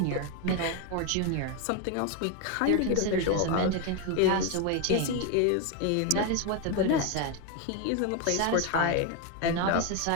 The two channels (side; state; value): both; different; correlation 0.02